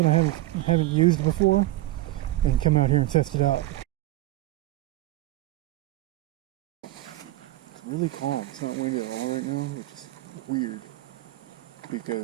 I haven't used before, and come out here and test it out. It's really calm. It's not windy at all right now, which is weird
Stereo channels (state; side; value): quieter; left; 17.1 dB